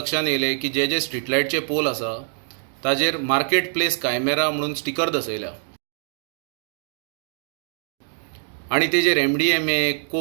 येयलें की जे स्ट्रीट लायटचे पोल आसा ताजेर मार्केट प्लेस कायमेरा म्हणून स्टिकर दसयल्या आनी तेजेर MDMA,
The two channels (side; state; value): left; silent; 63 dB below the other